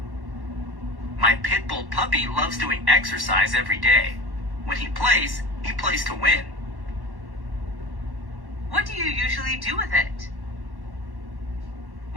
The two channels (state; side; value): late; left; 1.1 ms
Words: My pit bull puppy loves doing exercise every day. When he plays to win. What do you usually do with it?